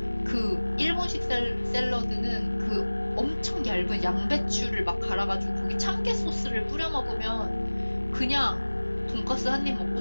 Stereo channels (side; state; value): both; inverted; correlation -1.00